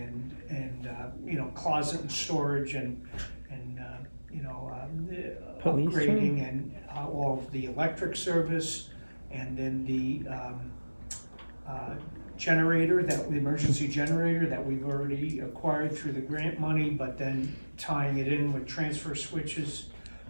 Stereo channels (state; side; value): inverted; both; correlation -1.00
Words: you know, closet and storage and you know, Police upgrading and all of the electric service, and then the generator, the emergency generator that we've already acquired through the grant money, but then tying it in with transfer switches.